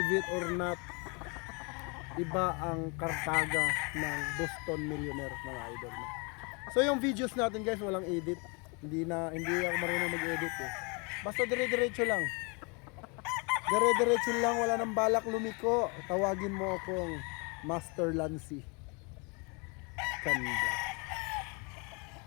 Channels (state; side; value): quieter; right; 32.1 dB